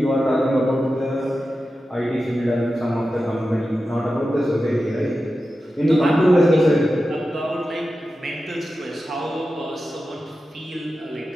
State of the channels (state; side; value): normal; both; correlation 0.92